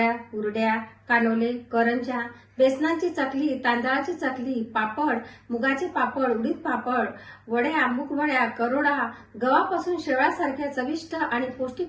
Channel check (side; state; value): both; identical; correlation 1.00